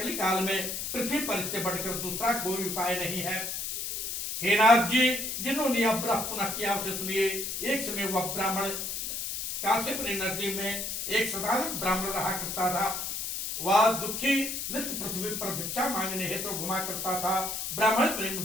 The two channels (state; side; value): noise; left; hiss, 4 dB below the sound